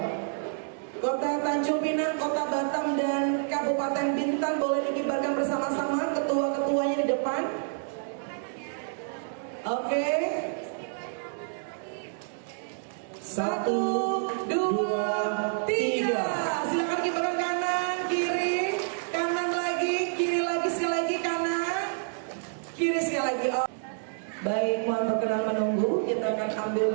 Kota Tanjung Pinang, Kota Batam dan Kabupaten Bintan boleh dikibarkan bersama-sama. Ketua-ketuanya di depan. Oke. 1, 2, 3. Silakan kibarkan kanan, kiri, kanan lagi, kiri lagi, sekali lagi kanan, kiri sekali lagi. Oh. Baik, mohon perkenan menunggu. Kita akan ambil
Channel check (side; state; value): left; silent; 59 dB below the other